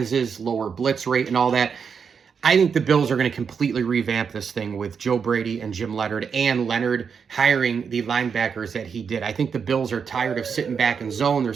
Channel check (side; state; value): left; quieter; 6.4 dB